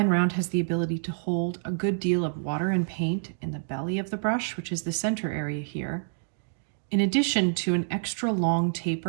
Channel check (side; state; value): left; silent; digital silence